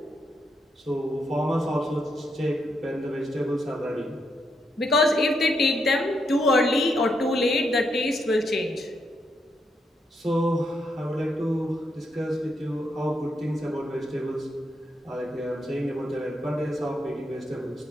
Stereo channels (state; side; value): normal; both; correlation 0.79